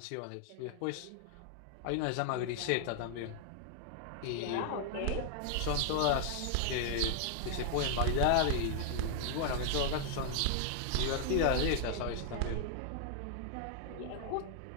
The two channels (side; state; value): both; different; correlation 0.00